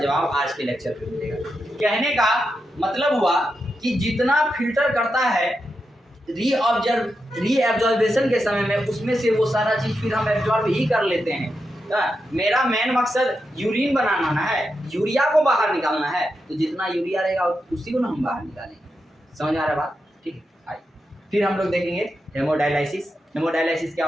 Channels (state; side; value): normal; both; correlation 0.87